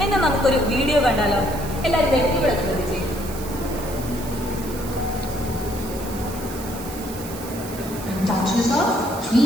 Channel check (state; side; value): noise; right; hiss, 13 dB below the sound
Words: എന്നാ നമുക്കൊരു വീഡിയോ കണ്ടാലോ? എല്ലാവരും ഇവിടെ ശ്രദ്ധിച്ചേ. Touch yourself